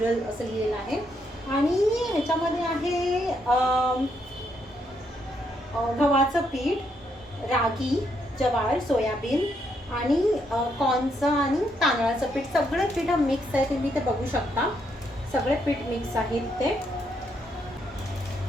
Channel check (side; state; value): both; normal; correlation 0.76